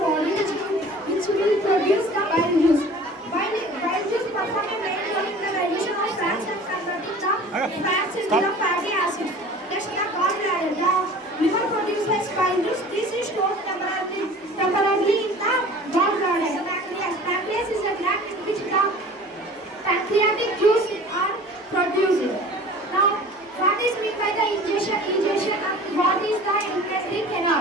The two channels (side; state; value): both; normal; correlation 0.43